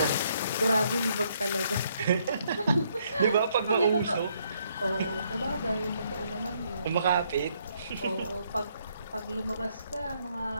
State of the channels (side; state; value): both; inverted; correlation -0.71